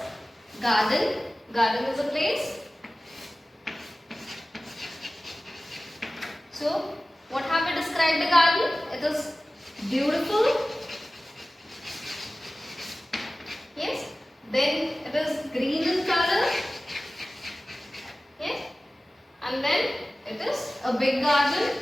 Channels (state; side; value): normal; both; correlation 0.97